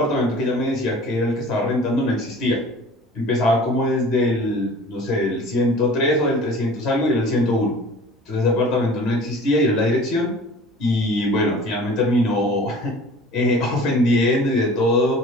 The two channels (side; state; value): both; normal; correlation 0.44